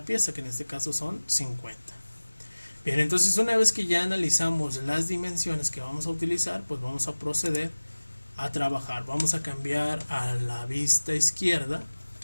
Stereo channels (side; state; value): both; inverted; correlation -1.00